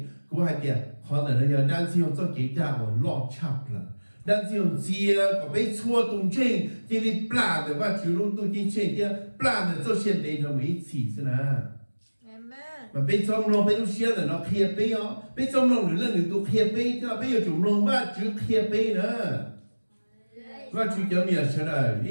我还点，可能要担心做给家我落差了，担心接个被错动静，这里不拉的话，就弄都进去的，不拉的做现在就没起是呢。mà bây giờ nó bây giờ xe là nó kia bây giờ bây giờ nó nữa là tụ kia bây giờ bây giờ chúng nó mà chữ kia bây nữa và chữ cái miệng sẽ là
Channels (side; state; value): both; inverted; correlation -1.00